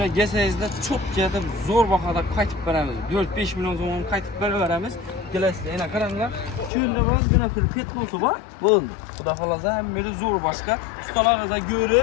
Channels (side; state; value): right; drops out; at 6.7 s